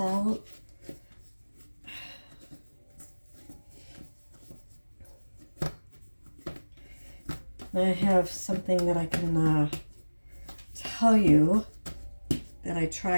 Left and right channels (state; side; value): inverted; both; correlation -1.00